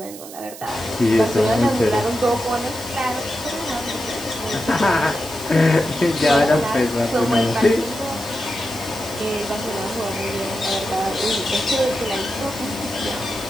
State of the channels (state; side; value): noise; right; hiss, 15 dB below the sound